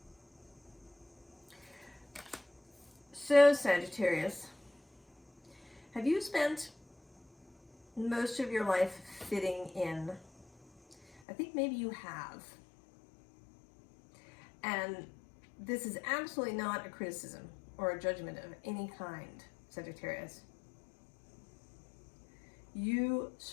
So Sagittarius, have you spent most of your life fitting in? I think maybe you have. And this is absolutely not a criticism or a judgment of any kind, Sagittarius. You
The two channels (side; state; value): right; drops out; at 11.2 s